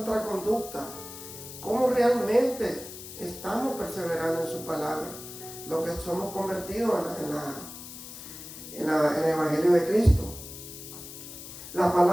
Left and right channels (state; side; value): noise; left; hiss, 13 dB below the sound